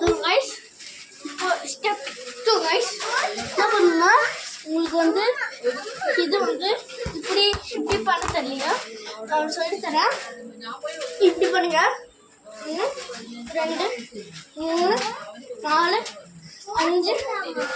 கைஸ் இப்போ ஸ்டெப் 2 கைஸ் என்ன பண்ணுன்னா, உங்களுக்கு வந்து இது வந்து இப்படி இப்படி பண்ண தெரியல, நான் சொல்லித்தரேன். இப்படி பண்ணுங்க, 1 2 3 4 5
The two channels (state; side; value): identical; both; correlation 1.00